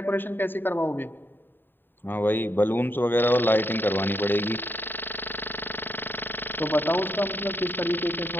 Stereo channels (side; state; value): right; late; 0.095 ms